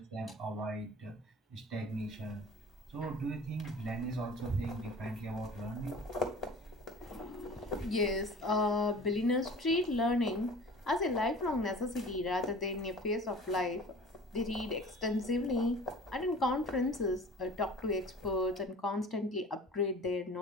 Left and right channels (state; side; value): normal; both; correlation 0.42